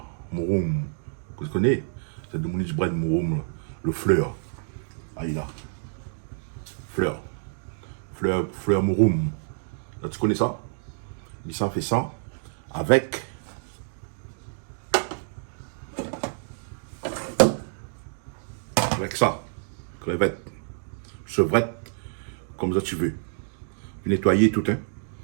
Mouroum, que tu connais? C'est de Monique Brad Mouroum, le fleur. Ah, il a. Fleur. Fleur Mouroum. Là, tu connais ça? Il s'en fait ça avec ça. Crevette. Chevrette. Comme ça tu veux. Nettoyer tout, hein.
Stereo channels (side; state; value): left; silent; digital silence